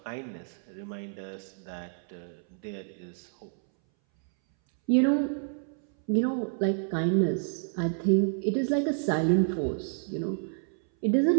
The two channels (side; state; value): left; silent; 59 dB below the other